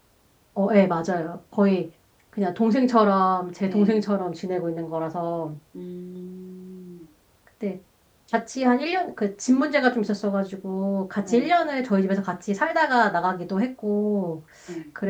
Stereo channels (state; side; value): identical; both; correlation 1.00